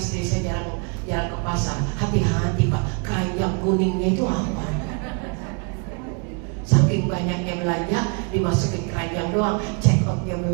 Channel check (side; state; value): left; quieter; 35.4 dB